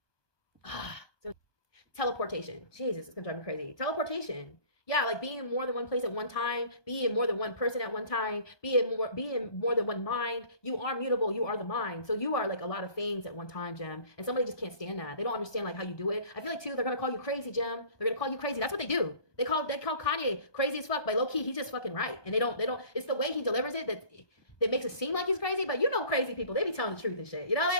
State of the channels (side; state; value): right; late; 1.2 ms